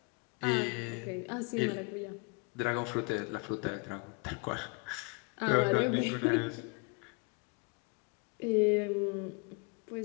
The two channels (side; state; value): right; quieter; 32.7 dB